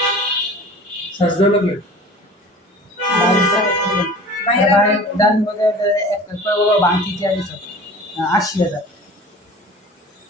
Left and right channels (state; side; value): normal; both; correlation 0.42